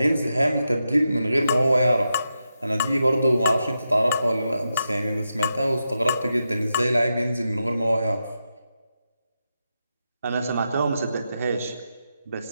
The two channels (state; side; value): inverted; both; correlation -0.87